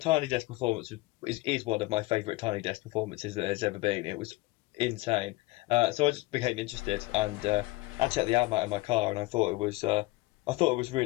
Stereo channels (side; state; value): right; quieter; 20.7 dB